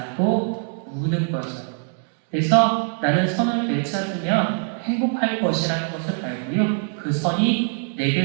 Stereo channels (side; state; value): left; silent; 56 dB below the other